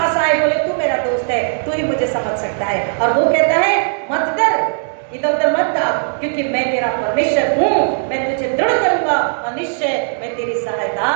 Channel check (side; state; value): left; silent; digital silence